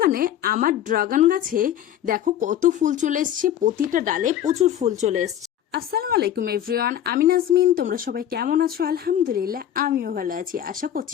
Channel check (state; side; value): quieter; right; 10.8 dB